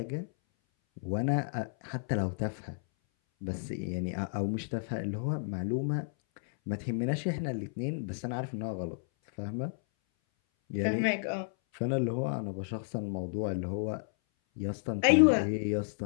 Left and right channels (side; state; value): right; silent; 56 dB below the other